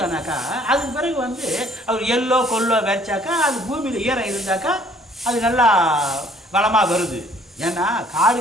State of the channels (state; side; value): normal; both; correlation 0.59